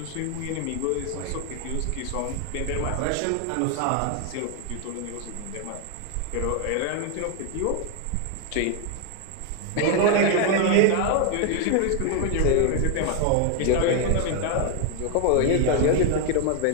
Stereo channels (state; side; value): different; both; correlation 0.00